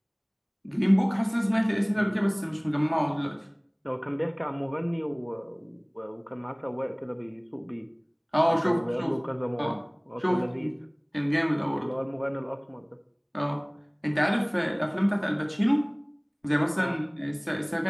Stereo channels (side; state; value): both; identical; correlation 1.00